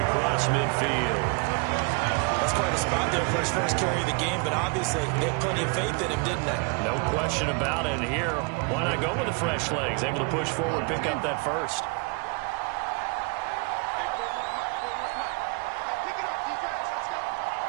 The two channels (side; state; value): left; quieter; 31.9 dB